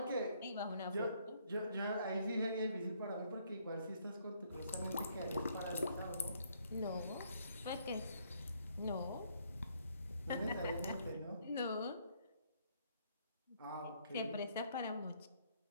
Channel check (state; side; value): inverted; both; correlation -0.68